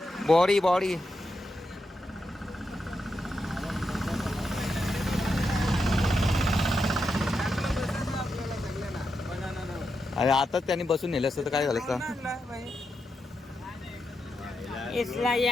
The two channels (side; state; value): both; normal; correlation 0.86